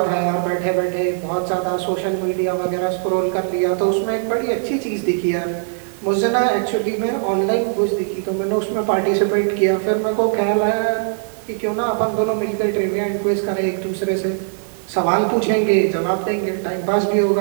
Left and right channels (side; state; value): left; silent; digital silence